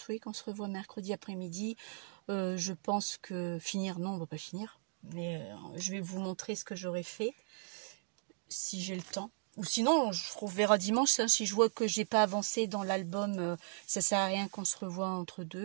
oui, qu'on se revoit mercredi après-midi. Je pense que finir, non, on va pas finir. Mais je vais vous montrer ce que j'aurais fait si j'ai le temps. Ou sinon, on verra dimanche. Hein, si je vois que j'ai pas avancé dans l'album, ça sert à rien qu'on se revoie entre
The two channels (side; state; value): left; silent; digital silence